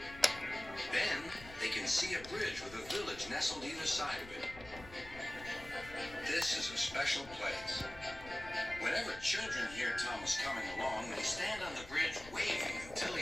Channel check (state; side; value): noise; left; rumble, 16 dB below the sound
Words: Then, they can see a bridge with a village nestled either side of it. This is a special place. Whenever children hear Thomas coming along, they stand on the bridge waving until